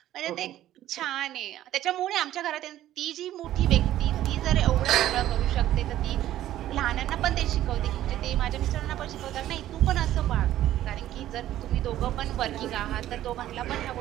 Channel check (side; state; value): left; quieter; 13.1 dB